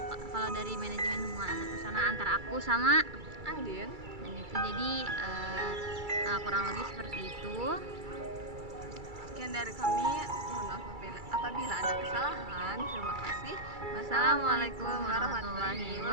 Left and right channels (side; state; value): left; late; 2.3 ms